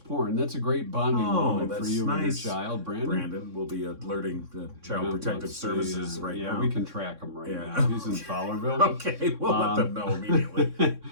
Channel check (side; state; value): left; late; 3.6 ms